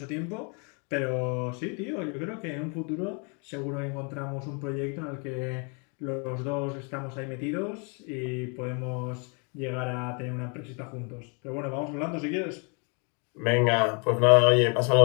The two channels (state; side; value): quieter; right; 35.7 dB